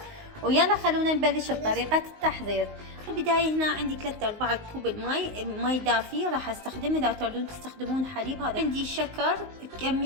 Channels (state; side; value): late; left; 19 ms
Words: ويلا خلونا نبلش بطريقه التحضير. البدايه هنا عندي 3/4 كوب ماي دافي راح استخدمه. اذا تردون تستخدمون حليب، هذا عندي شكر